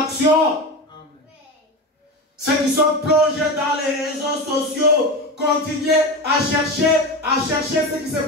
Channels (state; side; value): normal; both; correlation 0.23